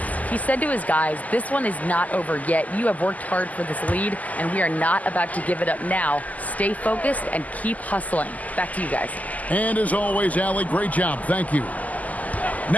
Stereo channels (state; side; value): late; right; 0.077 ms